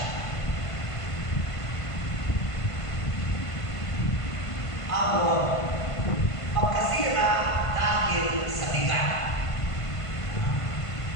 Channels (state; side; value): late; right; 1.5 ms